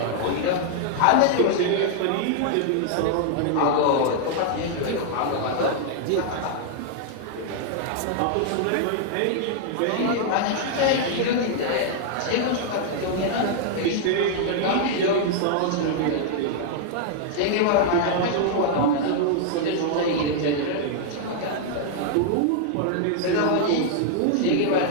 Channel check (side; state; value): both; different; correlation -0.01